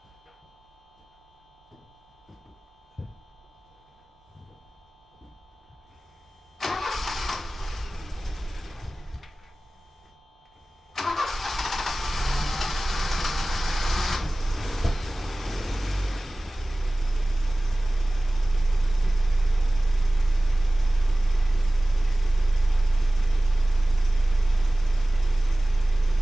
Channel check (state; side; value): normal; both; correlation 0.98